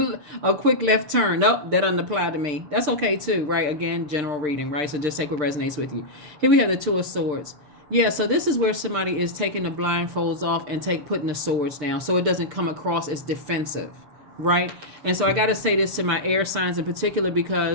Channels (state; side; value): late; left; 6.7 ms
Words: quick left turn. Nope, that doesn't apply to me. That's okay too, right? Again, general reading, right? So just take what resonates with you. Here we have the Two of Swords. Yeah, so this is where somebody is taking the blindfolds off and putting the swords down so it doesn't come across as defensive, right? And so I got to say this to my air signs in particular